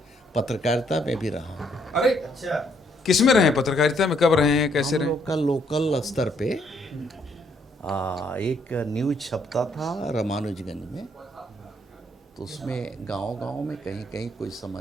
पत्रकारिता में भी रहा हूँ। अरे अच्छा, किस में रहे पत्रकारिता में, कब रहे हैं, कैसे हम रहे? लोग का लोकल स्तर पे एक न्यूज छपता था रामानुजगंज में, तो उसमें गांव-गांव में कहीं कहीं कोई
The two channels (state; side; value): normal; both; correlation 0.70